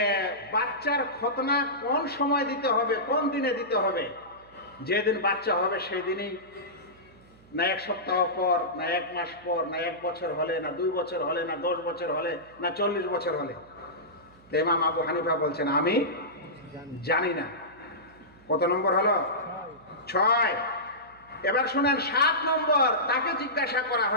বাচ্চার খতনা কোন সময় দিতে হবে, কোন দিনে দিতে হবে? যেদিন বাচ্চা হবে সেই দিনই, না 1 সপ্তাহ পর, না 1 মাস পর, না 1 বছর হলে, না 2 বছর হলে, না 10 বছর হলে, না 40 বছর হলে? তো ইমাম আবু হানিফা বলছেন আমি জানি না। কত নম্বর হলো? 6। এবার শুনেন 7 নম্বর, তাকে জিজ্ঞাসা করা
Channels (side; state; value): right; noise; hum, 27 dB below the sound